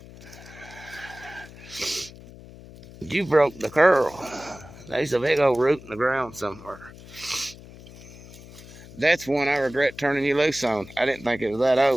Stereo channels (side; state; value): left; noise; hum, 18 dB below the sound